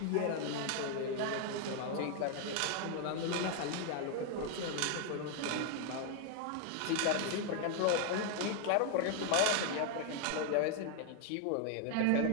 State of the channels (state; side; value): different; both; correlation 0.00